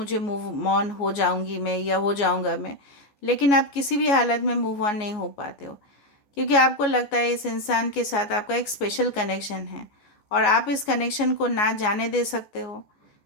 मूव ऑन हो जाऊंगी मैं या हो जाऊंगा मैं, लेकिन आप किसी भी हालत में मूव ऑन नहीं हो पाते हो, क्योंकि आपको लगता है इस इंसान के साथ आपका एक स्पेशल कनेक्शन है और आप इस कनेक्शन को ना जाने दे सकते हो,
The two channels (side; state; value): right; late; 14 ms